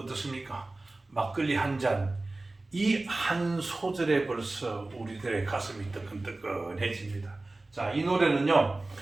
막걸리 한 잔, 이 한 소절에 벌써 우리들의 가슴이 뜨끈뜨끈해집니다. 자, 이 노래는요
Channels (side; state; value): left; quieter; 3.0 dB